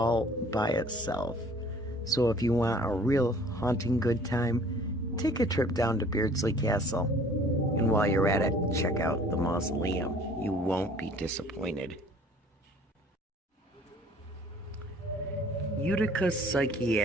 by itself. So if you want a real haunting good time, take a trip down to Beardsley Castle. And while you're at it, check out the mausoleum. You won't be disappointed. Utica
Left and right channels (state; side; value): normal; both; correlation 0.53